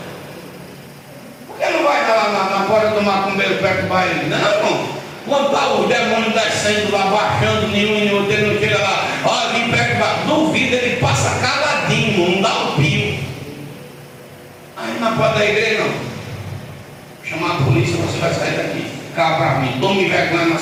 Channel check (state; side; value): identical; both; correlation 1.00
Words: Por que não vai lá na porta do macumbeiro perturbar ele? Não, irmão. Quando está os demônios descendo lá, baixando, nenhum e outro, ele não chega lá, olha, vem perturbar. Duvido, ele passa caladinho, não dá um pio. Aí na porta da igreja, não. Chamar a polícia, você vai sair daqui. Cá para mim, tome vergonha na